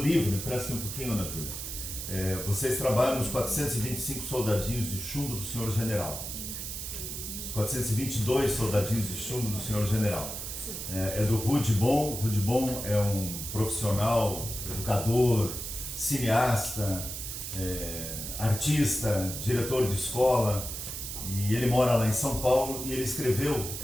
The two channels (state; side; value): noise; right; hiss, 6 dB below the sound